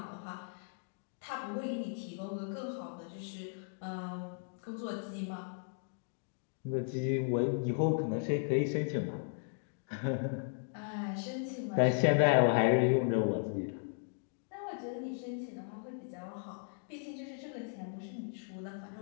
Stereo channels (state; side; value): silent; right; digital silence